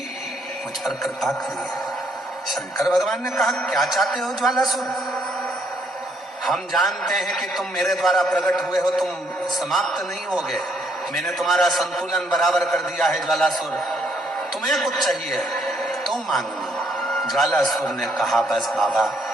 मुझ पर कृपा करिए। शंकर भगवान ने कहा क्या चाहते हो ज्वालासुर? हम जानते हैं कि तुम मेरे द्वारा प्रकट हुए हो, तुम समाप्त नहीं होगे। मैंने तुम्हारा संतुलन बराबर कर दिया है ज्वालासुर, तुम्हें कुछ चाहिए तो मांगो। ज्वालासुर ने कहा बस बाबा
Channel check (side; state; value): both; normal; correlation 0.70